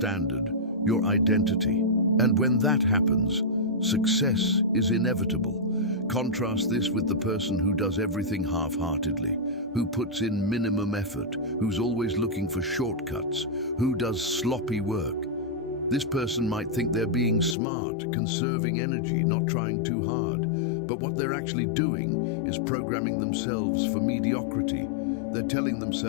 your identity. And when that happens, success is inevitable. Contrast this with the person who does everything half-heartedly, who puts in minimum effort, who's always looking for shortcuts, who does sloppy work. This person might think they're being smart, conserving energy, not trying too hard. But what they're actually doing is programming themselves for mediocrity. They're telling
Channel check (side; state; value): right; drops out; at 17.6 s